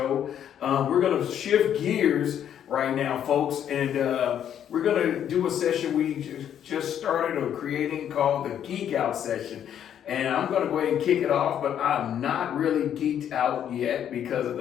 We're gonna shift gears right now, folks, and we're gonna do a session we just started creating called the Geek Out session. And I'm going to go ahead and kick it off, but I'm not really geeked out yet because of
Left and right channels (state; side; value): quieter; right; 9.7 dB